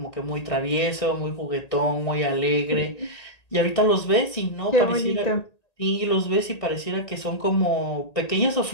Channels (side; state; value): right; late; 1.9 ms